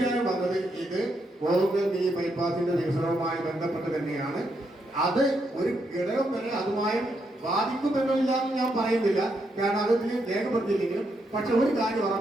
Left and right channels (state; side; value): normal; both; correlation 0.79